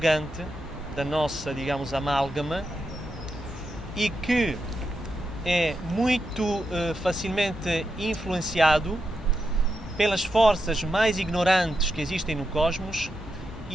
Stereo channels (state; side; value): normal; both; correlation 0.85